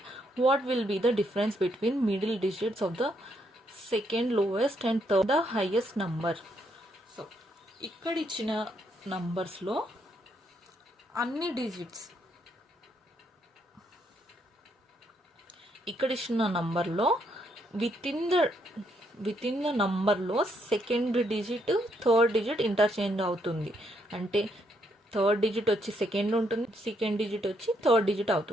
what will be the difference between middle digits of the second lowest and third the highest number? So ఇక్కడ ఇచ్చిన నంబర్స్లో అన్ని డిజిట్స్, ఇక్కడ ఇచ్చిన నంబర్లో విత్ ఇన్ ద నంబర్లో second digit third digit interchange అవుతుంది. అంటే థర్డ్ డిజిట్ వచ్చి సెకండ్ ఉంటుంది, సెకండ్ డిజిట్ వచ్చి థర్డ్ డిజిట్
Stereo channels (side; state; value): both; normal; correlation 0.74